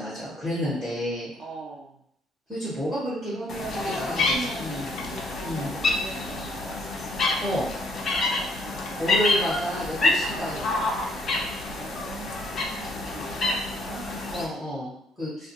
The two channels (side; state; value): both; normal; correlation 0.67